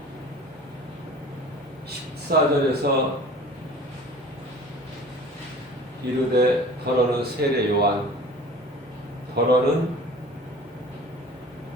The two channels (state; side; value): normal; both; correlation 0.43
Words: 14절에서 이르되 더러는 세례 요한, 더러는